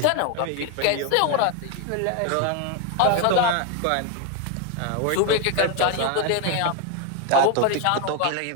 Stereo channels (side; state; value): both; different; correlation 0.01